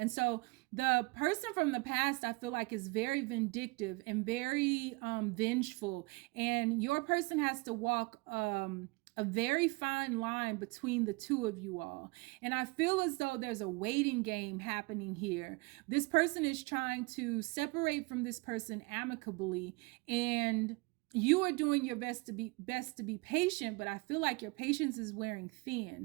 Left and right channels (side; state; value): left; quieter; 26.6 dB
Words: so the person from the past, I feel like, is very vindictive and very vengeful. And your person has to walk a very fine line between the 2 of you all. And I feel as though there's a waiting game happening here. This person is trying to separate from this person amicably, and you are doing your best to be patient, but I feel like your patience is wearing